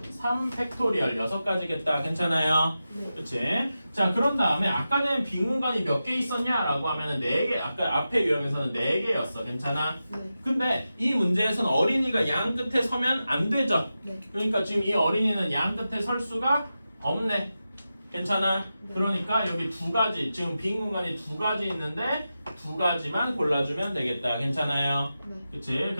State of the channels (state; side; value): inverted; both; correlation -0.91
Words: 3팩토리얼 6가지겠다. 괜찮아요? 네. 그치? 자, 그런 다음에 아까는 빈 공간이 몇 개 있었냐라고 하면은 4개, 아까 앞에 유형에서는 4개였어. 괜찮아? 네. 근데 이 문제에서는 어린이가 양 끝에 서면 안 되죠? 네. 그러니까 지금 이 어린이는 양 끝에 설 수가 없네. 괜찮아? 네. 그러니까 여기 두 가지 지금 빈 공간이 두 가지 있는데 두 가지만 골라주면 되겠다. 괜찮아요? 네. 그치?